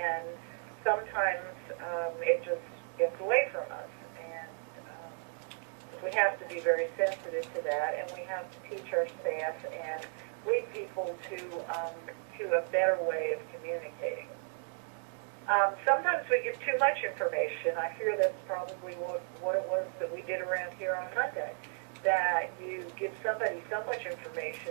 sometimes it just gets away from us. And we have to be very sensitive to that, and we have to teach our staff and lead people to a better way of communicating. Sometimes we give too much information. I fear that's probably what it was that we did around here on Monday, that you give somebody so much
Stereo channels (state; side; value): silent; left; 55 dB below the other